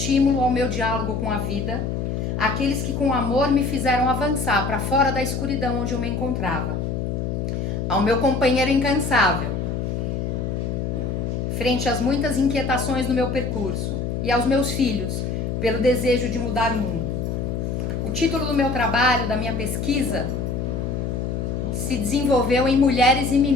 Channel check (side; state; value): left; noise; hum, 2 dB below the sound